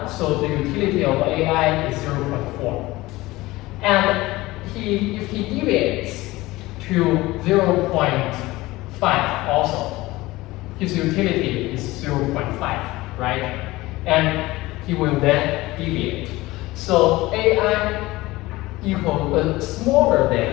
so the utility of AI is 0.4. And if he deviates to 0.5 also, his utility is 0.5, right? And he will then deviate. So AI equal smaller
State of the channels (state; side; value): quieter; right; 19.4 dB